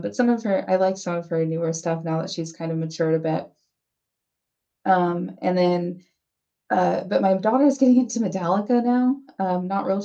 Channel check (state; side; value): identical; both; correlation 1.00